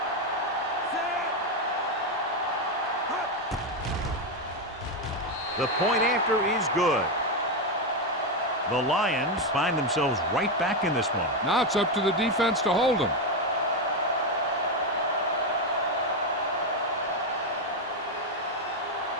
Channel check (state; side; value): normal; both; correlation 0.07